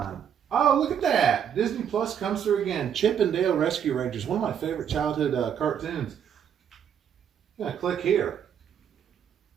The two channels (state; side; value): quieter; left; 8.5 dB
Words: Oh, look at that. Disney Plus comes through again. Chip and Dale Rescue Rangers, one of my favorite childhood cartoons. I'm gonna click here.